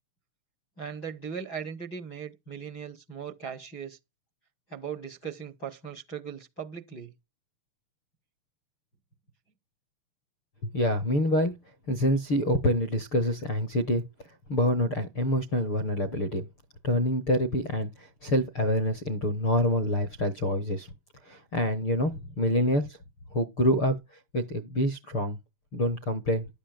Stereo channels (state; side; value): late; right; 6.7 ms